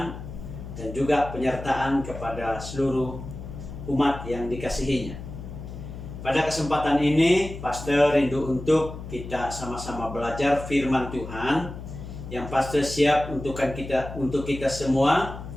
dan juga penyertaan kepada seluruh umat yang dikasihinya. Pada kesempatan ini, Pastor rindu untuk kita sama-sama belajar firman Tuhan yang Pastor siap untuk kita semua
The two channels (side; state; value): left; noise; hum, 10 dB below the sound